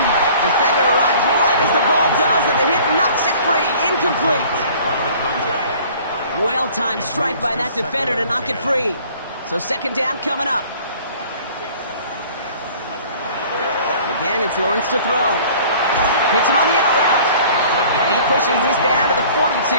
Defender arrives right as the ball does, and the hit knocks it free. Incomplete. Well-timed strike by that defender to knock it free. So 2nd down coming up. Again, it's Lawrence to throw. Hits him on the out route. And he pushes this down to the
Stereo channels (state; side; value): inverted; both; correlation -0.50